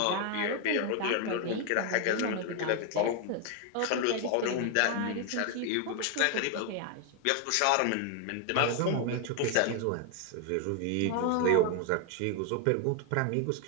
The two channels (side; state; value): both; different; correlation 0.01